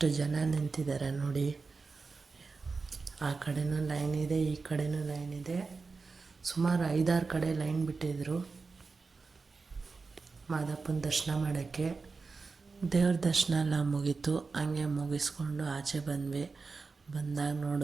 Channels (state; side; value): quieter; left; 4.4 dB